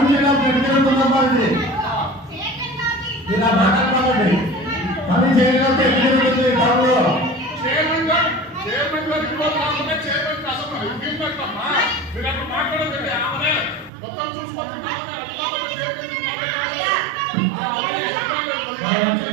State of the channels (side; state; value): left; drops out; at 13.9 s